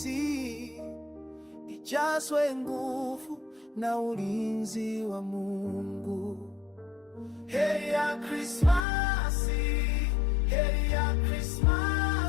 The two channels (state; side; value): drops out; right; at 8.8 s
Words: ijazwe nguvu na ulinzi wa Mungu. Heri ya Krismasi, heri ya Krismasi.